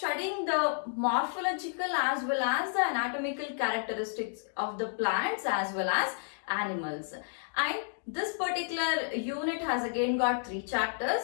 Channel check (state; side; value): silent; right; digital silence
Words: the morphological as well as the anatomical characteristics of the plants as well as animals. And this particular unit has again got 3